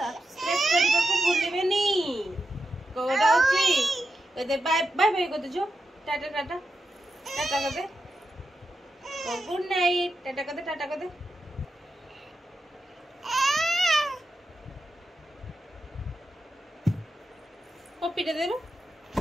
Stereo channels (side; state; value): both; normal; correlation 0.88